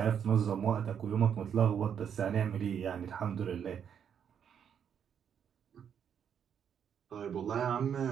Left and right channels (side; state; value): left; quieter; 8.2 dB